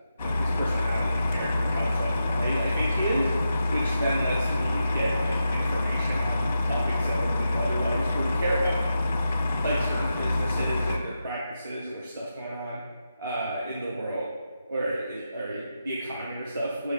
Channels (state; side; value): inverted; both; correlation -0.87